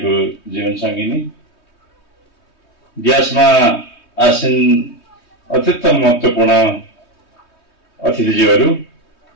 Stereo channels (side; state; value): right; late; 3.2 ms